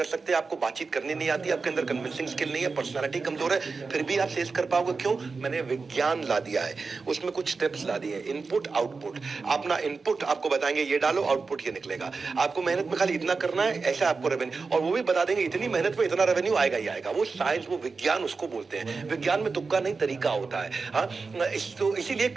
सकते, आपको बातचीत करनी नहीं आती, आपके अंदर कन्विंसिंग स्किल नहीं है, पर्सनालिटी कमजोर है, फिर भी आप सेल्स कर पाओगे। क्यों? मैंने विज्ञान ला दिया है, उसमें कुछ स्टेप्स ला दिए, इनपुट आउटपुट। अपना इनपुट आपको बताएंगे ये डालो, आउटपुट ये निकलेगा। आपको मेहनत में खाली इतना करना है, ऐसा आपको रेवेन्यू, और वो भी बता देंगे इतनी मेहनत में इतना रेवेन्यू आएगा ही आएगा। वो साइंस, वो विज्ञान उसको बोलते हैं। विज्ञान में तुक्का नहीं, तरीका होता है। हाँ, तो इसीलिए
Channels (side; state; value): left; quieter; 4.4 dB